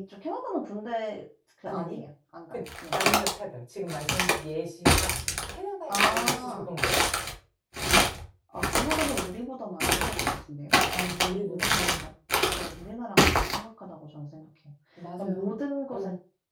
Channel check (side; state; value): both; identical; correlation 1.00